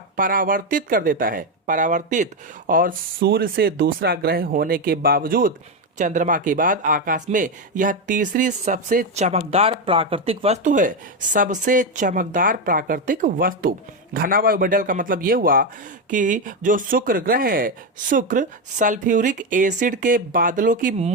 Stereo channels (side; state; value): both; normal; correlation 0.09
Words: परावर्तित कर देता है, परावर्तित। और सूर्य से दूसरा ग्रह होने के बावजूद चंद्रमा के बाद आकाश में यह तीसरी सबसे चमकदार प्राकृतिक वस्तु है, सबसे चमकदार प्राकृतिक वस्तु। घना वायुमंडल का मतलब यह हुआ कि जो शुक्र ग्रह है, शुक्र सल्फ्यूरिक एसिड के बादलों की